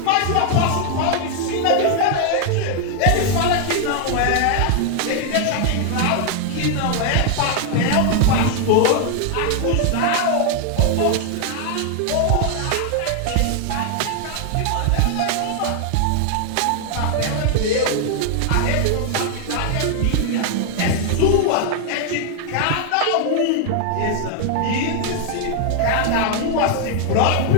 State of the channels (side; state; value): both; different; correlation 0.00